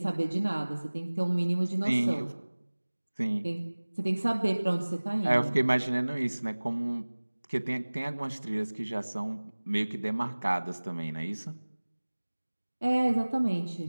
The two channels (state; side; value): inverted; both; correlation -1.00